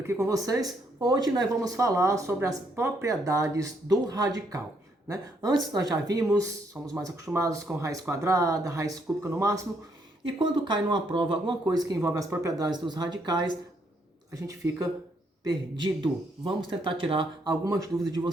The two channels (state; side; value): normal; both; correlation 0.73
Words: com vocês. Hoje nós vamos falar sobre as propriedades do radical, né? Antes nós já vimos, somos mais acostumados com raiz quadrada, raiz cúbica no máximo, e quando cai numa prova alguma coisa que envolve as propriedades dos radicais, a gente fica perdido. Vamos tentar tirar algumas dúvidas de